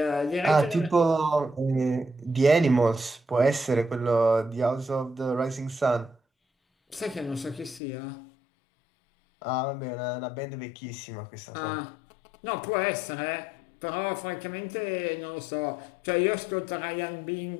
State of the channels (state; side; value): drops out; right; at 7.8 s